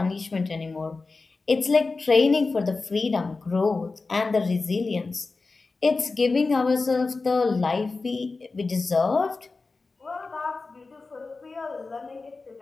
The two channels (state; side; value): quieter; right; 3.9 dB